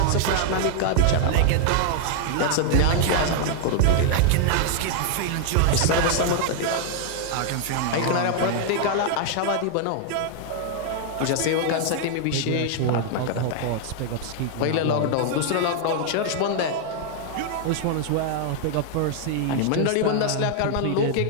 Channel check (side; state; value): both; different; correlation 0.00